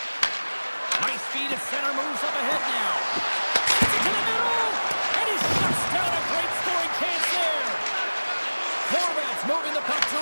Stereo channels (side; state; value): both; inverted; correlation -1.00